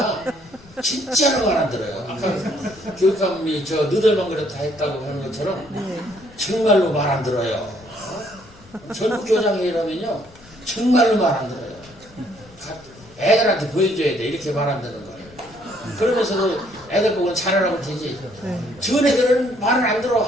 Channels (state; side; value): noise; left; rumble, 24 dB below the sound